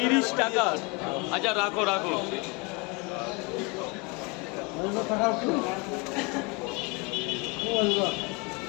টাকা। আচ্ছা রাখো রাখো।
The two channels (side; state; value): right; quieter; 28.2 dB